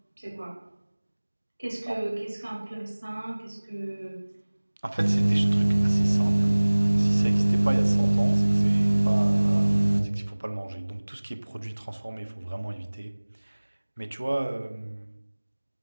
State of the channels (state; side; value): inverted; both; correlation -1.00